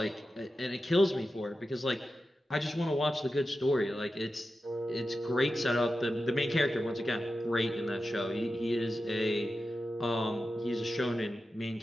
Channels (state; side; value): normal; both; correlation 0.92